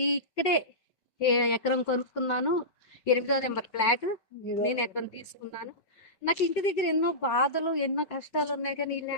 ఎకరం కొనుక్కున్నాను. 8వ నెంబర్ ఫ్లాట్ నేను ఎకరం తీసుకున్నాను. నాకు ఇంటి దగ్గర ఎన్నో బాధలు ఎన్నో కష్టాలు ఉన్నాయి, కానీ ఈ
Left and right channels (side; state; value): right; late; 5.3 ms